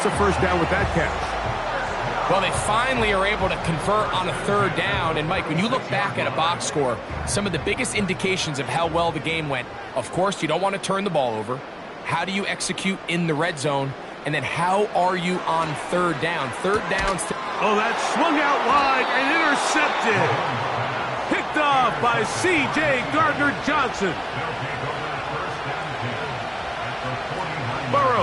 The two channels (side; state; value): both; identical; correlation 1.00